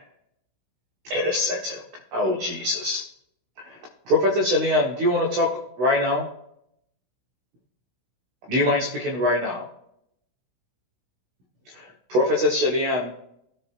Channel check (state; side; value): late; left; 16 ms